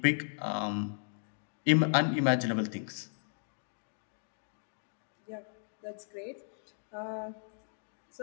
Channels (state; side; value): silent; right; digital silence